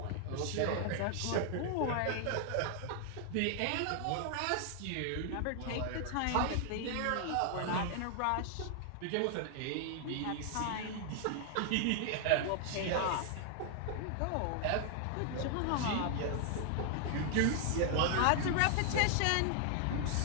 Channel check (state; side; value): different; both; correlation 0.00